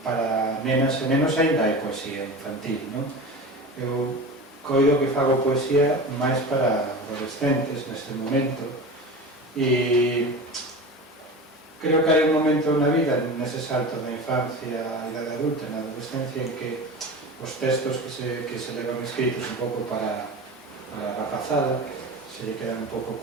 para nenas e nenos ainda hai poesía infantil, non? Eu coido que fago poesía máis para adolescentes neste momento e creo que hai un momento na vida, nese salto da infancia á idade adulta, na adolescencia, en que os textos que se levan escritos un pouco para a rapazada se lle quedan un pouco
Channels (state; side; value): normal; both; correlation 0.31